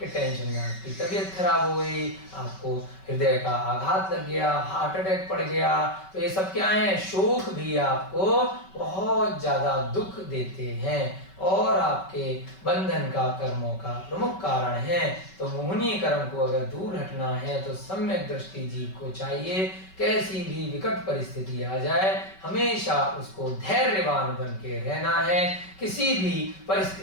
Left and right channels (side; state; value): right; late; 5.3 ms